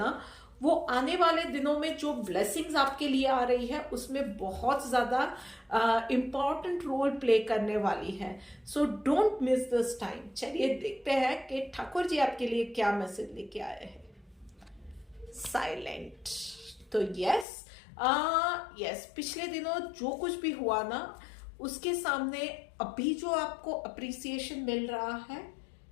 वो आने वाले दिनों में जो ब्लेसिंग्स आपके लिए आ रही है उसमें बहुत ज्यादा इंपॉर्टेंट रोल प्ले करने वाली है। So don't miss this time. चलिए देखते हैं कि ठाकुर जी आपके लिए क्या मैसेज लेके आए हैं। साइलेंट। तो यस, पिछले दिनों जो कुछ भी हुआ ना, उसके सामने अभी जो आपको अप्रिसिएशन मिल रहा है,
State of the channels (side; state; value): right; drops out; at 17.4 s